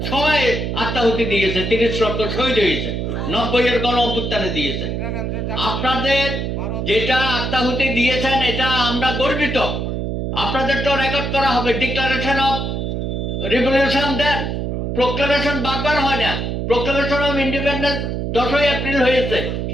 সবাই আত্মাহুতি দিয়েছে, 30 লক্ষ শহীদ হয়েছে, 90-এর গণ অভ্যুত্থানে দিয়েছে। আপনাদের যেটা আত্মাহুতি দিয়েছেন এটা আমরা গর্বিত। আপনাদের তো রেকর্ড করা হবে, declaration of revolution then, proclamation বারবার হয় না, প্রোক্লামেশন অফ ইন্ডিপেন্ডেন্স 10ই এপ্রিল হয়েছে,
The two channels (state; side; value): noise; right; hum, 2 dB below the sound